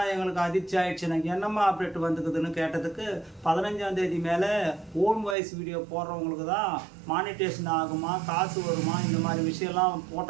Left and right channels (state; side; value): drops out; left; at 5.4 s